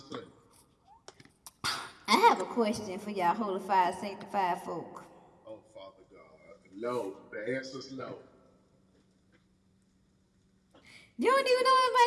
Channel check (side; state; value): both; identical; correlation 1.00